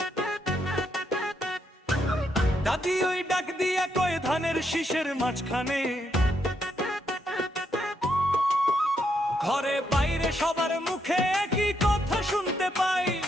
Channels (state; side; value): normal; both; correlation 0.78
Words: দাদি ওই ডাক দিয়া কয়ে ধানের শীষের মাঝখানে। ঘরে বাইরে সবার মুখে একই কথা শুনতে পাই,